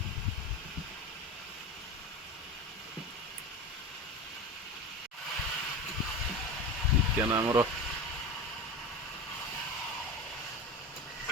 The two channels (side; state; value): both; normal; correlation 0.27